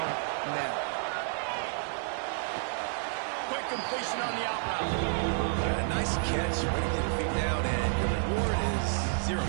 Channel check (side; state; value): left; silent; digital silence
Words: now. Quick completion on the out route. A nice catch, way to get your feet down, and your reward is 0